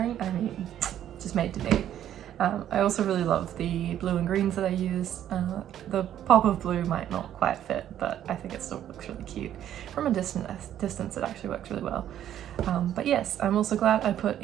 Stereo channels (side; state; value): left; quieter; 11.1 dB